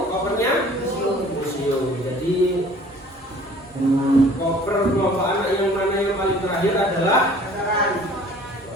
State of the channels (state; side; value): normal; both; correlation 0.51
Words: kopernya museum. Jadi koper kelompok anak yang mana yang paling terakhir adalah restoran.